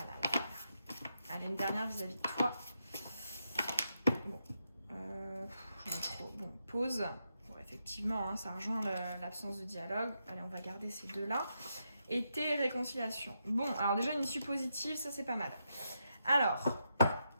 là. Allez, une dernière vis-à-vis de toi. Bon, j'en ai trop. Bon, pause. Bon, effectivement, hein, ça rejoint l'absence de dialogue. Allez, on va garder ces deux-là. Été et réconciliation. Bon, alors déjà une issue positive, ça c'est pas mal. Alors,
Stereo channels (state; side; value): inverted; both; correlation -0.83